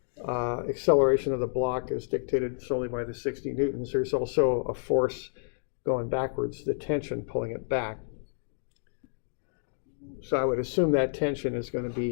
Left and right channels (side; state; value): right; silent; digital silence